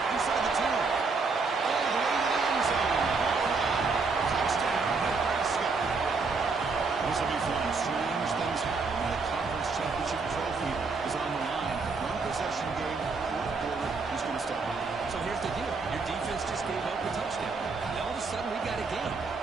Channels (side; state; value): left; quieter; 4.3 dB